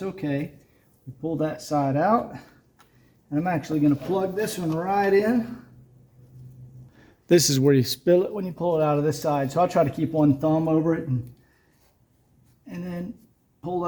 okay. We pull that side out. And I'm actually going to plug this one right in. This is where you spill it when you pull it out of this side. So I'll try to keep one thumb over it and then pull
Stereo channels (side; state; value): both; identical; correlation 1.00